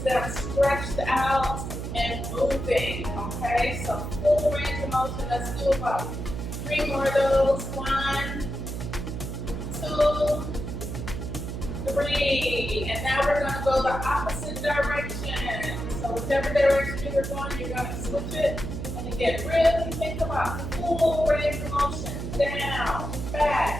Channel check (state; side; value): noise; right; hum, 5 dB below the sound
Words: them stretched out and moving. Okay, so full range of motion. Let's do about 3 more of those. 1, 2, 3. And now we're going to go the opposite direction. So whichever direction you're going, you're going to switch it. And again, really think about full range of motion. Down,